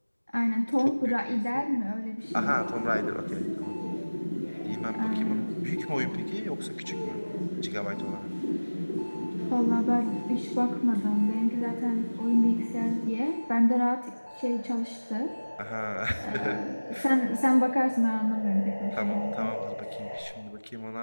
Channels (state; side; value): inverted; both; correlation -1.00